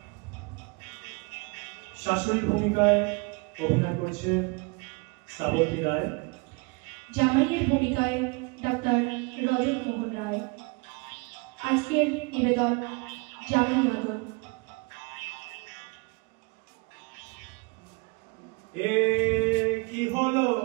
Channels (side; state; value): left; quieter; 29.4 dB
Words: শাশুড়ি ভূমিকায় অভিনয় করছে শ্রাবন্তী রায়। জামাইয়ের ভূমিকায় ডাক্তার রজত মোহন রায়। আজকের নিবেদন জামাই আদর। এ কি হলো,